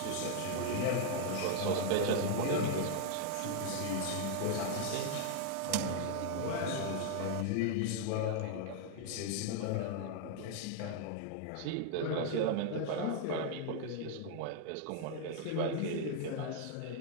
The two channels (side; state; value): both; different; correlation 0.00